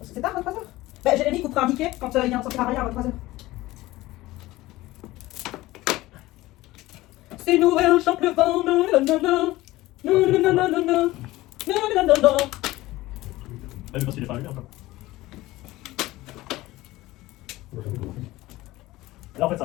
C'est tard, 23h. Bah, Jérémy coupera un ticket quand il y a un sortir à rien à 23h. C'est Noël, chante le vent, nanana. Nanana. Nanana. Ah, mais parce qu'il est pas allumé encore. Là, en fait,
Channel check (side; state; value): right; quieter; 18.0 dB